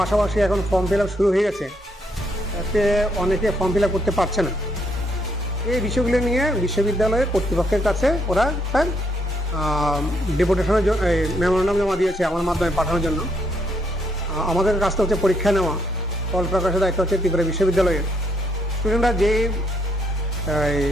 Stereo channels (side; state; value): both; normal; correlation 0.73